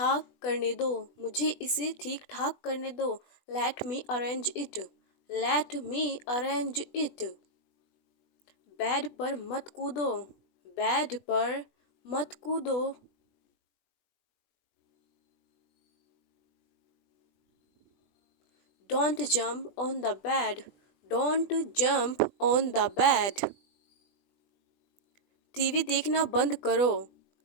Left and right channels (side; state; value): right; late; 20 ms